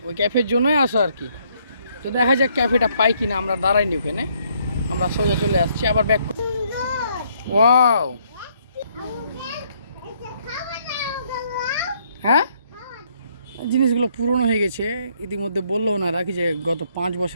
ওই ক্যাফের জন্যই আসা আর কি। তো দেখা যাক ক্যাফেটা পাই কিনা। আমরা দাঁড়াইনি ওখানে, আমরা সোজা চলে আসছি আবার ব্যাক। ওয়াও, হ্যাঁ জিনিসগুলো পুরনো হয়ে গেছে ইতিমধ্যে। বললো ওনারা কি যে গত 5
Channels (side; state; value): both; inverted; correlation -0.69